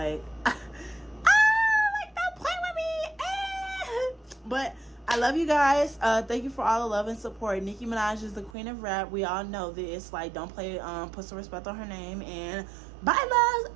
but I love you guys. Thank you for all the love and support. Nicki Minaj is the queen of rap. We all know this. Like, don't play, put some respect on her name. And bye,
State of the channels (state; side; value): drops out; left; at 8.6 s